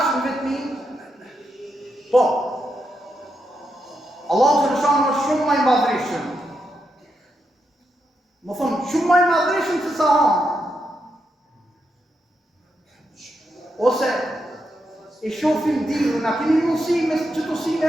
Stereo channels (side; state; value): both; normal; correlation 0.83